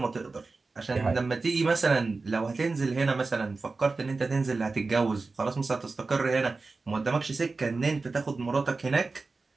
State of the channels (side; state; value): left; quieter; 3.9 dB